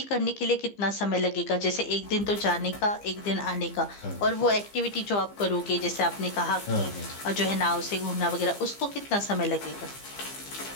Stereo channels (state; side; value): late; right; 15 ms